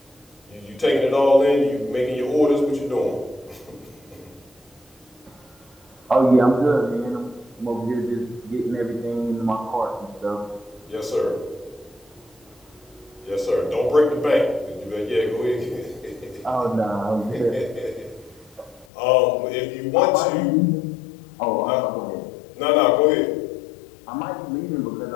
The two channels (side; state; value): right; drops out; at 18.9 s